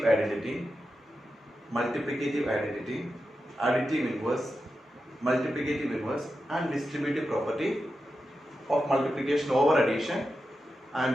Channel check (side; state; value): both; normal; correlation 0.90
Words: identity, multiplicative identity, additive inverse, multiplicative inverse and distributive property of multiplication over addition